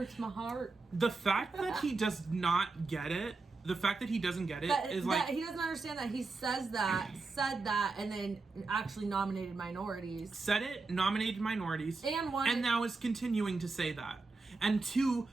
my heart. The fact that he does not get it, the fact that he doesn't get it is that he doesn't understand that he said that, and then actually nominated minorities. Said it, nominated minorities, and now is continuing to say that. And to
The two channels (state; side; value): quieter; left; 3.9 dB